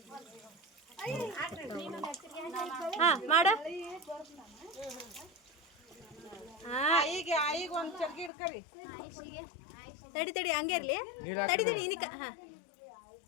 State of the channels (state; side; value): drops out; right; at 8.3 s